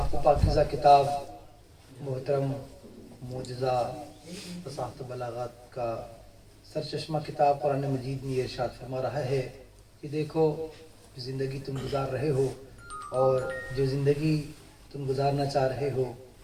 و پاکیزہ کتاب محترم معجزہ فصاحت و بلاغت کا سرچشمہ کتاب قرآن مجید میں یہ ارشاد فرما رہا ہے کہ دیکھو جو زندگی تم گزار رہے ہو اور جو زندگی تم گزارنا چاہ رہے ہو،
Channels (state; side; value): identical; both; correlation 1.00